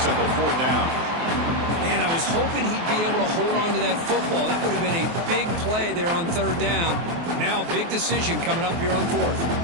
up a 4th down. Man, I was hoping he'd be able to hold on to that football. That would have been a big play there on 3rd down. Now, big decision coming up here on 4th.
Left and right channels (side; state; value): left; late; 24 ms